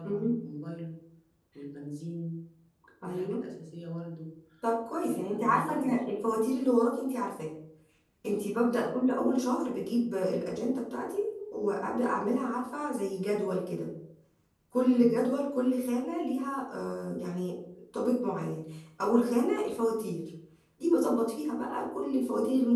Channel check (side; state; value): both; identical; correlation 1.00